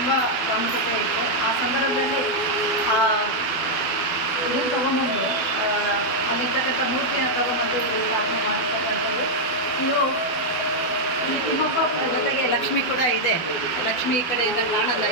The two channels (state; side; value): late; right; 12 ms